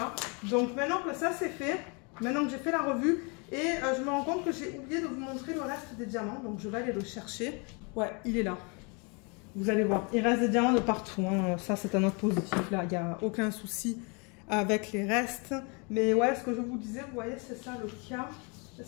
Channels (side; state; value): right; quieter; 32.8 dB